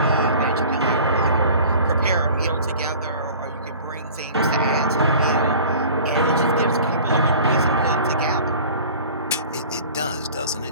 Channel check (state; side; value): inverted; both; correlation -0.44